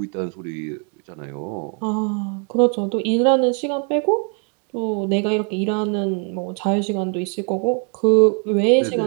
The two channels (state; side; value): quieter; left; 36.6 dB